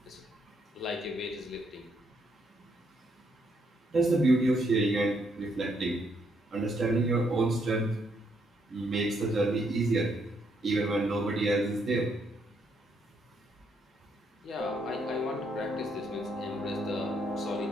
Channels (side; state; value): both; normal; correlation 0.73